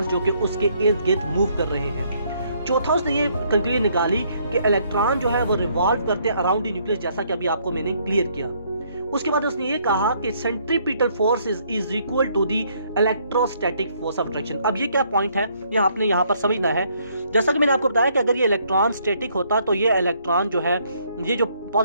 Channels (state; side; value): inverted; both; correlation -0.68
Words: जो कि उसके इर्द गिर्द मूव कर रहे हैं। चौथा उसने ये कंक्लूजन निकाली कि इलेक्ट्रॉन जो है वो रिवॉल्व करते हैं अराउंड द न्यूक्लियस, जैसा कि अभी आपको मैंने क्लियर किया। उसके बाद उसने ये कहा कि centripetal force is equal to the electrostatic force of attraction. अब ये क्या पॉइंट है, ये आपने यहाँ पर समझना है। जैसा कि मैंने आपको बताया कि अगर ये इलेक्ट्रॉन स्टैटिक होता तो ये इलेक्ट्रॉन जो है, ये जो